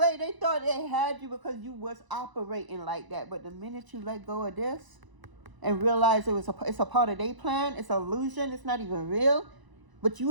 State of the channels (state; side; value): late; left; 1.0 ms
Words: they thought they had you because you was operating like that. But the minute you let go of this and realize it's a part of their plan, it's an illusion, it's not even real. But